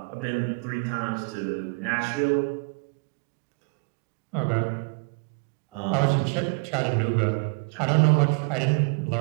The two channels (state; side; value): quieter; left; 34.4 dB